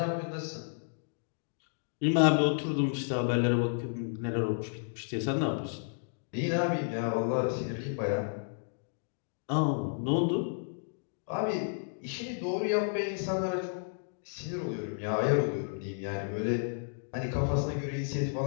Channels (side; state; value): right; silent; digital silence